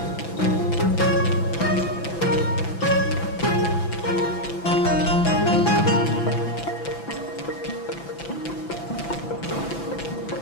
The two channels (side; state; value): right; late; 6.0 ms